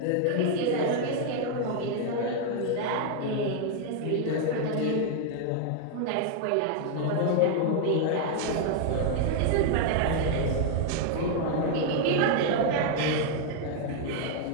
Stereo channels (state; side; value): different; both; correlation 0.00